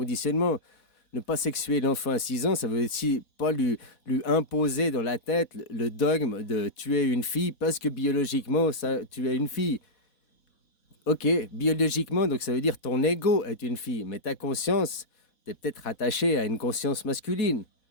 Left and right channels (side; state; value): right; late; 4.1 ms